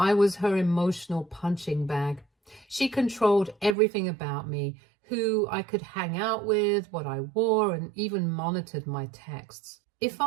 was her emotional punching bag. She controlled everything about me, who I could hang out with, what I wore, and even monitored my texts. If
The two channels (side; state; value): left; drops out; at 3.8 s